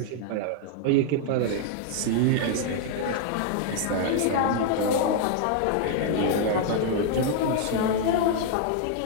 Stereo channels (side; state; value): both; different; correlation -0.01